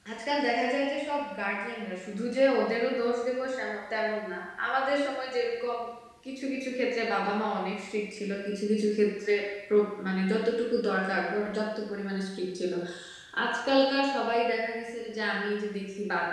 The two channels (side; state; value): both; identical; correlation 1.00